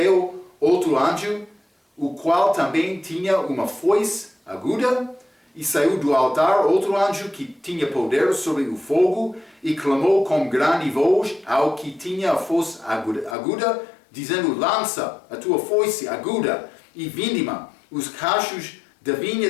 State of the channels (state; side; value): drops out; right; at 13.4 s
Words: outro anjo, o qual também tinha uma foice aguda, e saiu do altar outro anjo que tinha poder sobre o fogo, e clamou com grande voz ao que tinha a foice aguda, dizendo: lança a tua foice aguda e vindima os cachos da